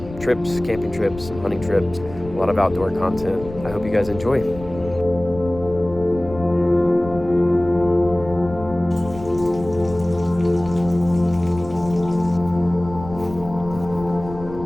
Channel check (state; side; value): noise; left; rumble, 14 dB below the sound